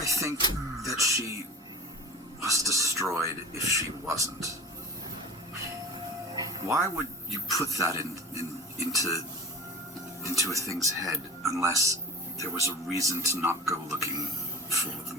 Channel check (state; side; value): normal; both; correlation 0.35